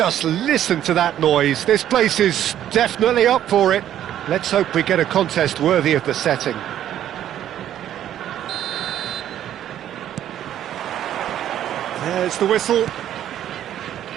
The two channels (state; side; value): quieter; left; 11.2 dB